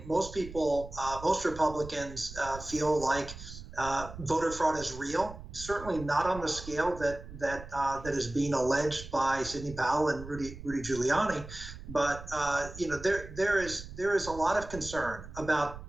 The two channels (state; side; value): noise; right; rumble, 13 dB below the sound